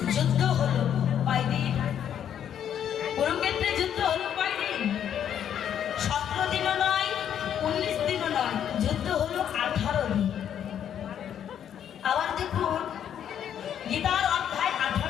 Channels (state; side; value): quieter; right; 9.4 dB